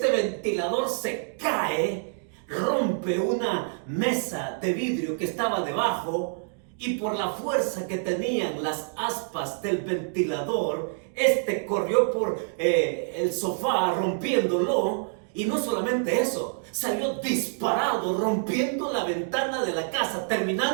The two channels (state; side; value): silent; left; digital silence